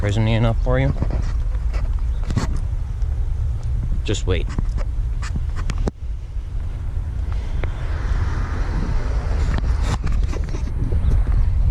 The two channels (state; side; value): identical; both; correlation 1.00